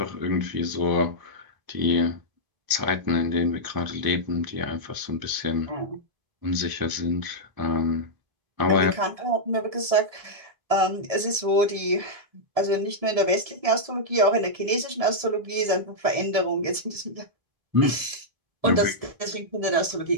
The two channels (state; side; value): late; left; 1.7 ms